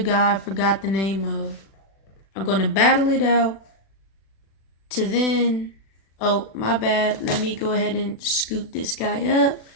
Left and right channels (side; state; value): right; late; 36 ms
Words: I forgot the name of. I'm gonna battle it out to then. Oh, my bad. Let me go ahead and scoot this guy up.